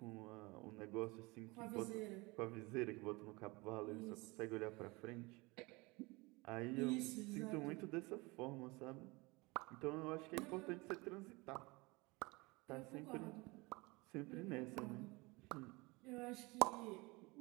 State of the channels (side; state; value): left; quieter; 24.8 dB